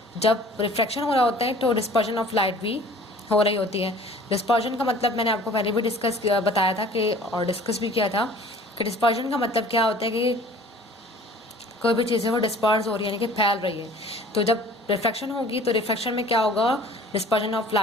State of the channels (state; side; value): normal; both; correlation 0.48